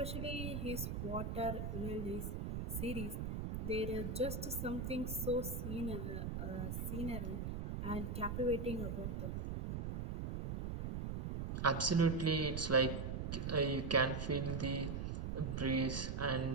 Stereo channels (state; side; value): noise; right; rumble, 3 dB below the sound